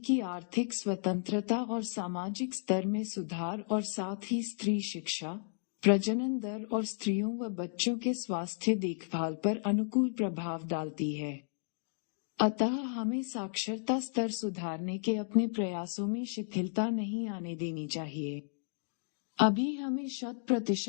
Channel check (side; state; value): right; silent; digital silence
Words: आर्थिक स्वतंत्रता और सामाजिक स्तर में सुधार और साथ ही स्त्री शिक्षा प्रजनन दर और स्त्रियों व बच्चों के स्वास्थ्य देखभाल पर अनुकूल प्रभाव डालती है। अतः हमें साक्षरता स्तर सुधारने के अपने प्रयासों में शिथिलता नहीं आने देनी चाहिए। अभी हमें